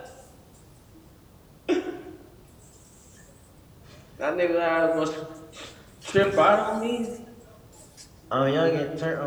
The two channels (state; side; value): identical; both; correlation 1.00